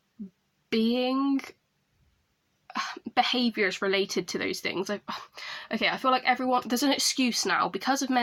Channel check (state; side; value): identical; both; correlation 1.00